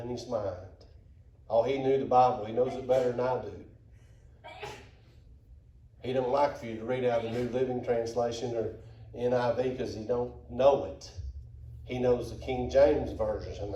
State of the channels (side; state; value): both; identical; correlation 1.00